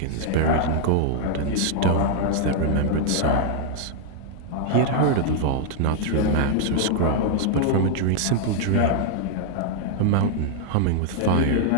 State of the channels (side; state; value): both; different; correlation 0.00